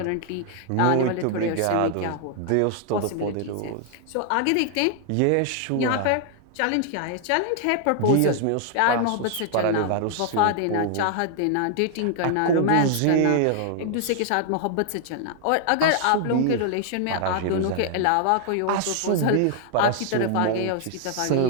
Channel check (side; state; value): both; different; correlation 0.00